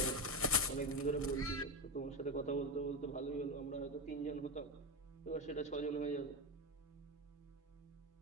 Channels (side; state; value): both; normal; correlation 0.17